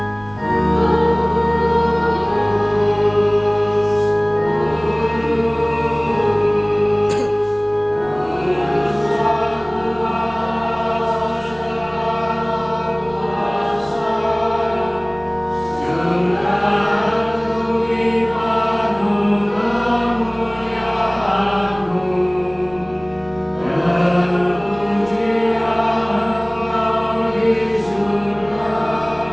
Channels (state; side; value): noise; right; rumble, 22 dB below the sound